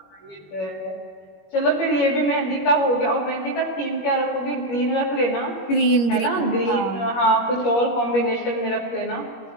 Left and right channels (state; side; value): late; right; 21 ms